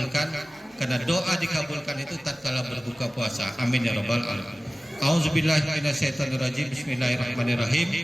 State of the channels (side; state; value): both; normal; correlation 0.97